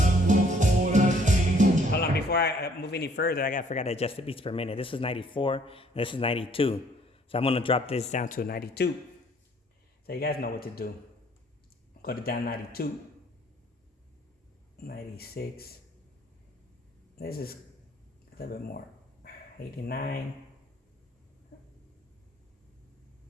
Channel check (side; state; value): both; normal; correlation 0.61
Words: Hold on, before I move any further, I forgot to adjust the beats per minute. This is 94, and this is 92. So I'm gonna drop this down to 92. So you guys know what to do. Go to down 92, 96. This is a little bit more. 89.